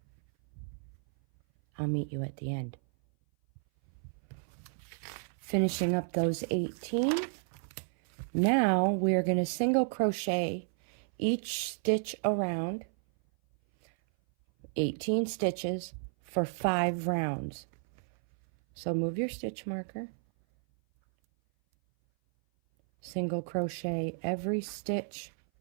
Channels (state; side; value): silent; left; 56 dB below the other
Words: I'll meet you at the end. Finishing up those 18. Now we're going to single crochet each stitch around, 18 stitches for 5 rounds. So move your stitch marker. Single crochet every stitch